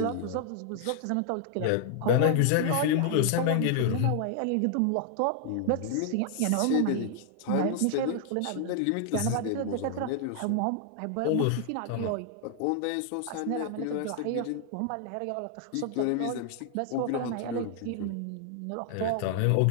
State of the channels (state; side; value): different; both; correlation 0.00